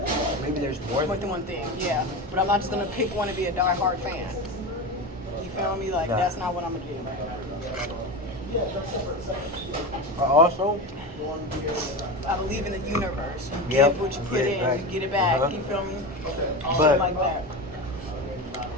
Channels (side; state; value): both; normal; correlation 0.23